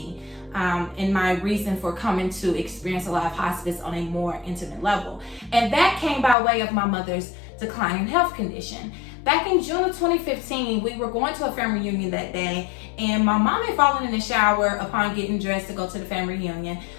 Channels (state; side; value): drops out; right; at 6.4 s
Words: and my reason for coming to experience Alive Hospice on a more intimate level. And that came by way of my mother's declining health condition. Back in June of 2015, we were going to a family reunion that day, and my mom had fallen in the shower upon getting dressed to go to the family reunion,